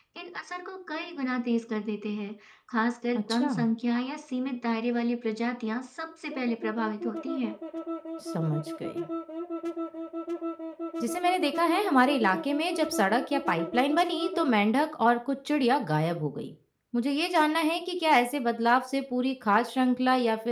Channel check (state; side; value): identical; both; correlation 1.00